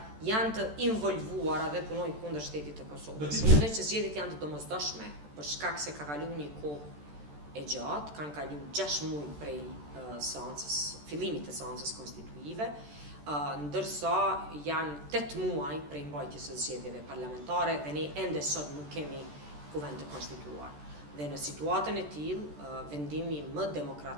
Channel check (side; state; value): left; late; 14 ms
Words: janë të involvuara dhe punojnë kundër shtetit të Kosovës. Mendoj që zgjedhjet janë të domosdoshme për shkak se ka kaluar një kohë e gjatë, kanë kaluar 6 muaj prej fillimit të seancës konstituive, ndërsa janë 8 muaj prej mbajtjes së zgjedhjeve parlamentare dhe ne ende sot nuk kemi kuvend të konstituar. Dhe në situatën e tillë, vendimi më